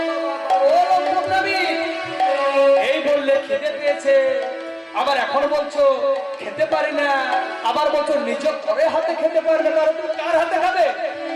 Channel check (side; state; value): both; identical; correlation 1.00